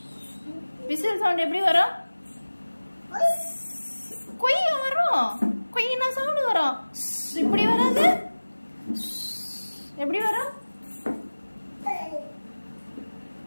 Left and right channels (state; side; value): inverted; both; correlation -1.00